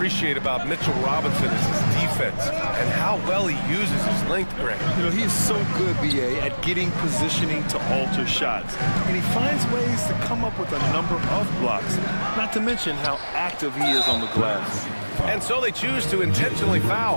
about Mitchell Robinson is his defense and how well he uses his length, Greg. You know, he's so good, BA, at getting positioning to alter shots. And he finds ways to come up with a number of blocks, not to mention how active he is on the glass. And so they choose to intentionally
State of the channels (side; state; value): both; inverted; correlation -1.00